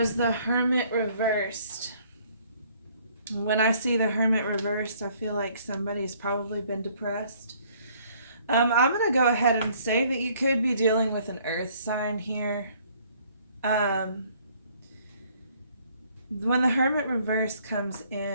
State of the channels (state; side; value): inverted; both; correlation -0.61